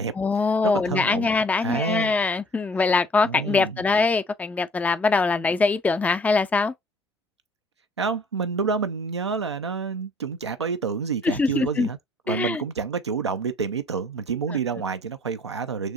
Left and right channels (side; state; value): both; normal; correlation 0.55